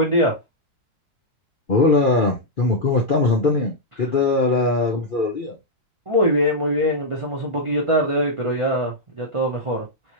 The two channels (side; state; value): both; normal; correlation -0.05